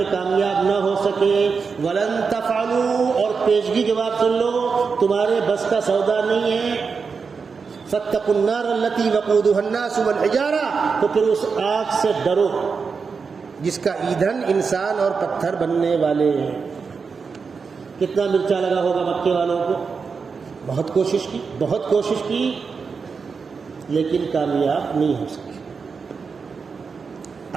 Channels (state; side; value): quieter; left; 5.3 dB